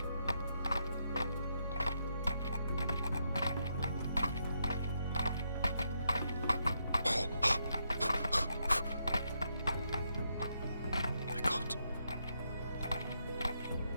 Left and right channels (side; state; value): both; inverted; correlation -0.79